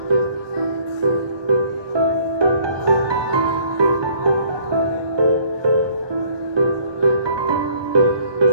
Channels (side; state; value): left; late; 1.2 ms